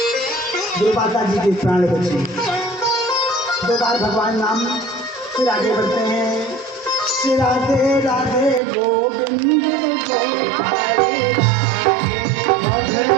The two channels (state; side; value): drops out; left; at 8.6 s